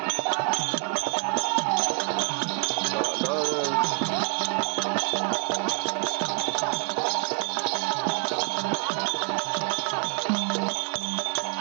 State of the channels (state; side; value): quieter; left; 37.9 dB